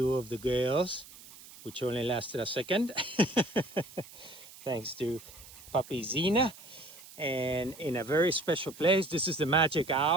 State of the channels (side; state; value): right; noise; hiss, 19 dB below the sound